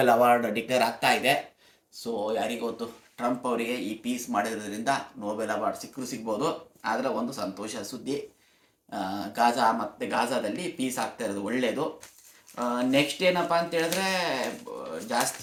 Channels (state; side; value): identical; both; correlation 1.00